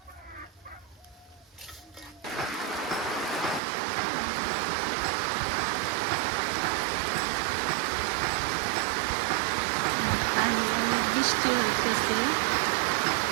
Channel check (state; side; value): drops out; left; at 3.6 s